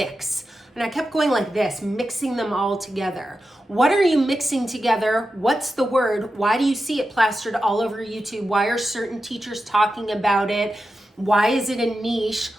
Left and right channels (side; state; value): both; normal; correlation 0.91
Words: And I kept going like this, mixing them all together. What are you mixing together? What's the word? Why do you see it plastered all over YouTube? Why are certain teachers talking about it? Why is it a niche?